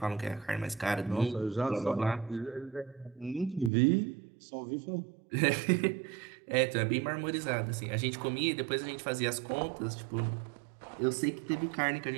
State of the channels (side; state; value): left; drops out; at 3.7 s